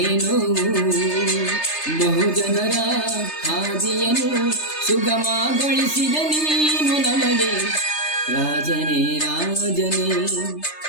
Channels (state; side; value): late; right; 3.3 ms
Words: ಬಹುಜನರ ಹಾದಿಯನ್ನು ಸುಗಮಗೊಳಿಸಿದ ನೀನು ನಮಗೆ. ರಾಜನೇ ರಾಜನೇ